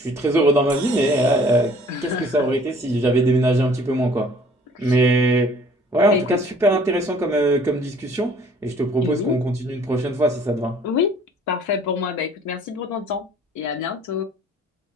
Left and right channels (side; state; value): both; normal; correlation 0.55